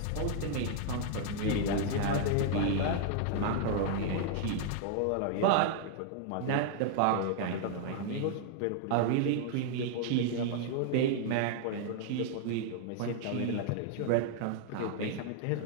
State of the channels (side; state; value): both; different; correlation 0.00